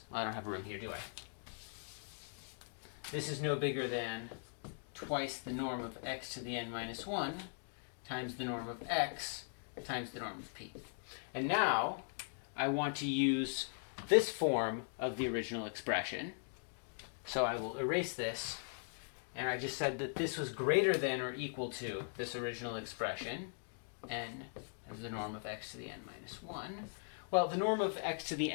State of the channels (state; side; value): silent; right; digital silence